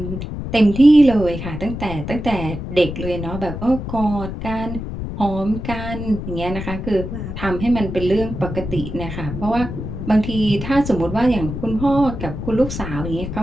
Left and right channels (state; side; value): noise; left; rumble, 7 dB below the sound